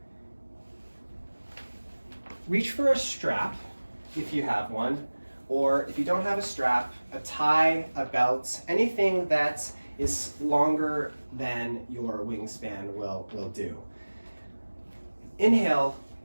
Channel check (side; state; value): both; inverted; correlation -1.00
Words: Reach for a strap if you have one, or if you don't have a strap, a tie, a belt, anything that is longer than your wingspan will do. Inhale,